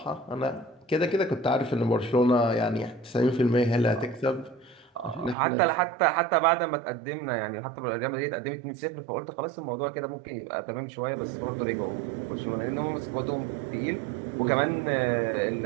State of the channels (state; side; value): drops out; left; at 5.4 s